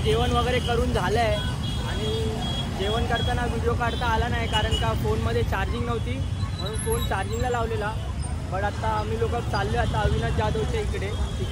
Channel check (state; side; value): identical; both; correlation 1.00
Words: जेवण वगैरे करून झालं आहे आणि जेवण करताना व्हिडिओ काढता आला नाही कारण का फोनमध्ये चार्जिंग नव्हती म्हणून फोन चार्जिंगला लावलेला. बट आता आम्ही लोक चाललो आता अविनाश जाधवच्या